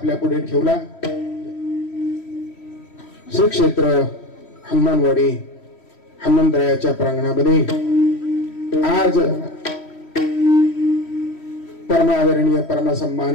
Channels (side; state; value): right; late; 3.1 ms